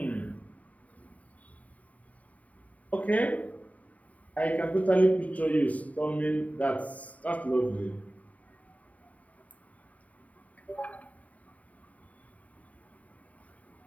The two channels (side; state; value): right; late; 0.070 ms